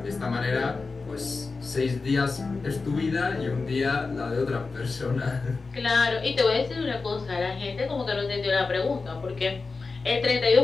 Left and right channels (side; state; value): right; quieter; 4.1 dB